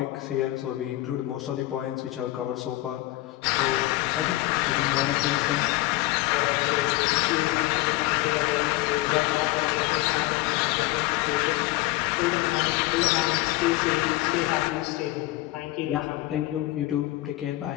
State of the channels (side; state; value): right; quieter; 18.4 dB